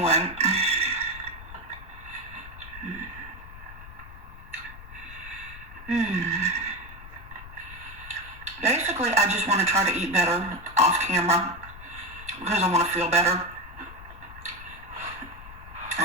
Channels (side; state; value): left; noise; rumble, 15 dB below the sound